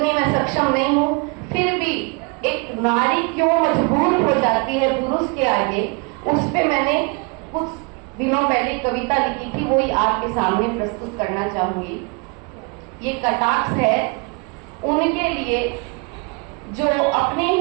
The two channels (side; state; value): left; quieter; 31.8 dB